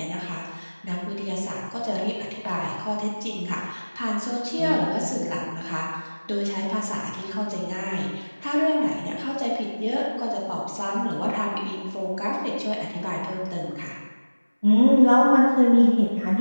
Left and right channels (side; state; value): both; inverted; correlation -1.00